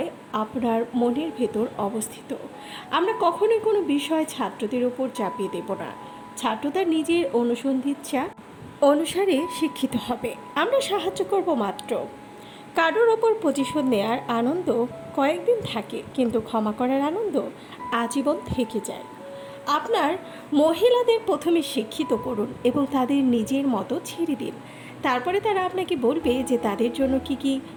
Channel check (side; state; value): both; identical; correlation 1.00